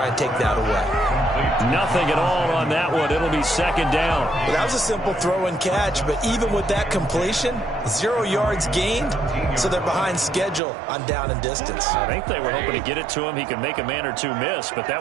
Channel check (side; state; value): left; drops out; at 10.6 s